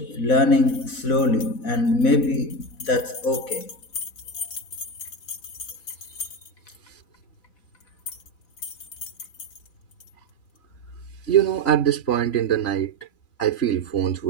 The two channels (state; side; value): late; right; 3.9 ms